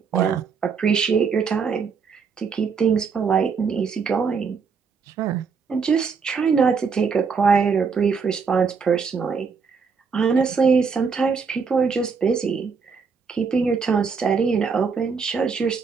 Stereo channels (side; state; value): left; quieter; 5.5 dB